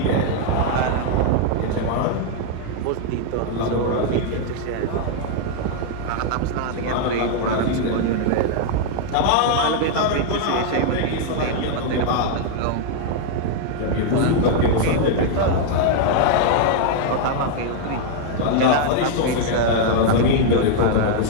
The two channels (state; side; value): different; both; correlation 0.00